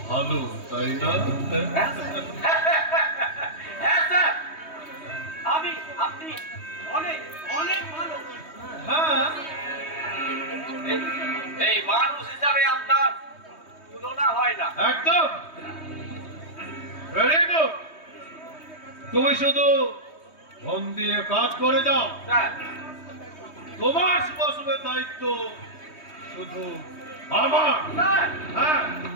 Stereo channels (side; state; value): right; late; 3.2 ms